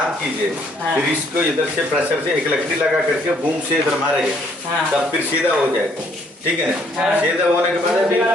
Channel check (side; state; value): both; normal; correlation 0.66